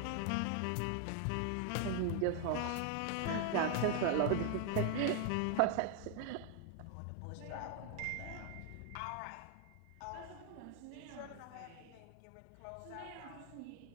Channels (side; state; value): both; different; correlation 0.00